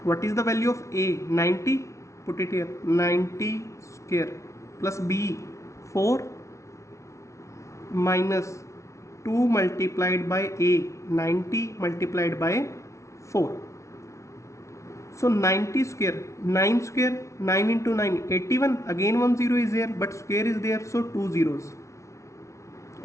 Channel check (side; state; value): right; late; 0.14 ms